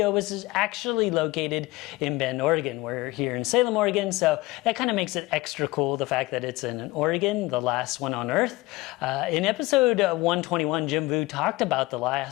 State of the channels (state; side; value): quieter; right; 20.5 dB